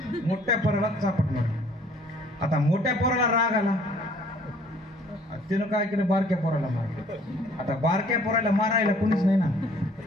मोठ्या पोराला चापट मारली. आता मोठ्या पोराला राग आला, तिनं काय केलं, बारक्या पोराला मारलं. आता बारक्या पोराला मारायला कोणीच नाही ना.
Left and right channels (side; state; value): both; normal; correlation 0.57